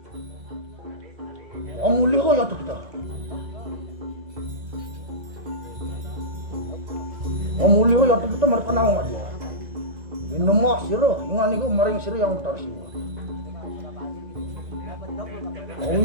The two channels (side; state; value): left; late; 2.0 ms